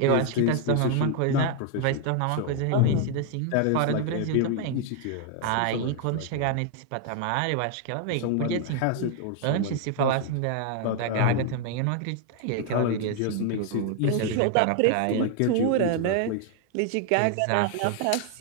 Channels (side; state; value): both; different; correlation 0.00